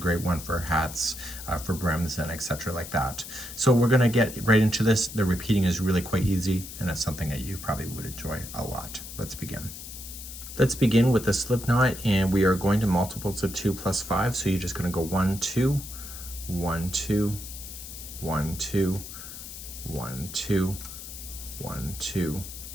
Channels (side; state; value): left; noise; hiss, 11 dB below the sound